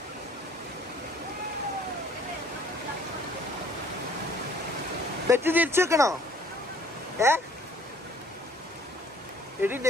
ബെറ്റ് തിരിച്ചു വെക്കണോ? എടി എന്നെ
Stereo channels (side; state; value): both; normal; correlation 0.57